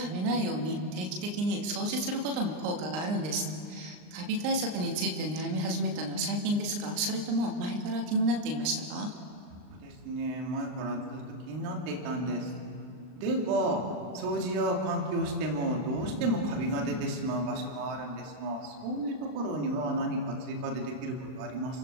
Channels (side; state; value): left; late; 39 ms